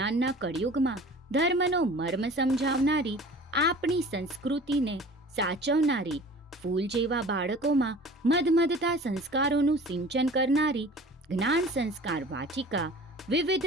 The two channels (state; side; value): normal; both; correlation 0.43